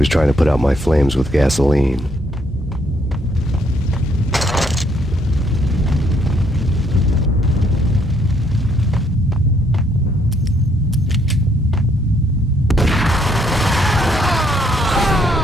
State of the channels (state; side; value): normal; both; correlation 0.70